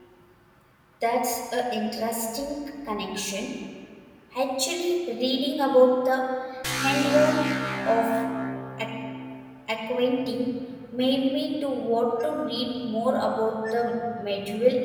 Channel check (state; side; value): identical; both; correlation 1.00